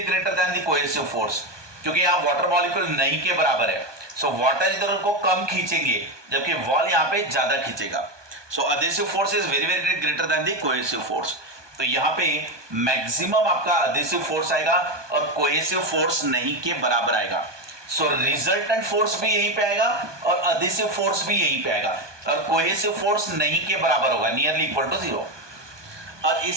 greater than the cohesive force, क्योंकि यहाँ वाटर मॉलिक्यूल नहीं के बराबर है। सो वाटर इधर उनको कम खींचेंगे जबकि वॉल यहाँ पे ज्यादा खींचेगा। सो adhesive force is very very greater than the cohesive force। तो यहाँ पे मैक्सिमम आपका adhesive force आएगा और cohesive force नहीं के बराबर आएगा। सो रिजल्टेंट फोर्स भी यहीं पे आएगा और adhesive force भी यहीं पे आएगा, और cohesive force नहीं के बराबर होगा, नियरली इक्वल टू 0। और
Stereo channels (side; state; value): left; late; 1.2 ms